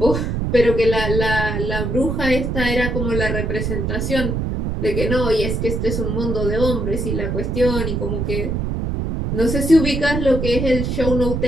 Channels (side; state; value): right; noise; rumble, 1 dB below the sound